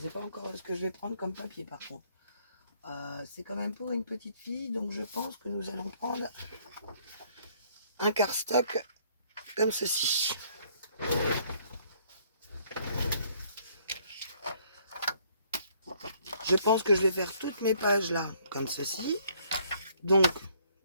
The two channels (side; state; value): both; inverted; correlation -0.64